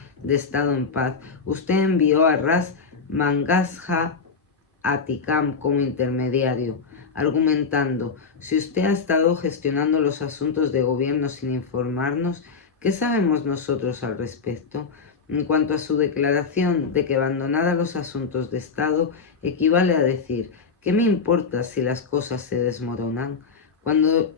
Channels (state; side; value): quieter; right; 5.1 dB